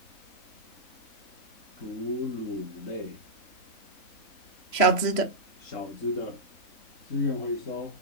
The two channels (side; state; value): right; late; 3.1 ms